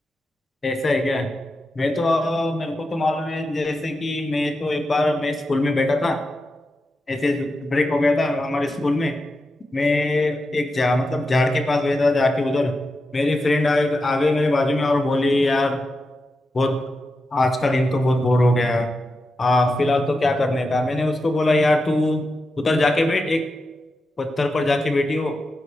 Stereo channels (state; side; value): normal; both; correlation 0.89